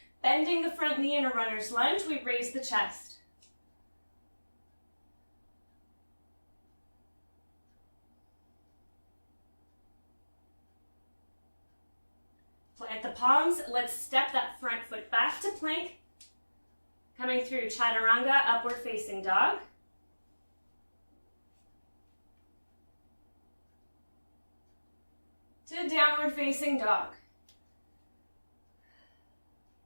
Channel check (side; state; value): both; inverted; correlation -1.00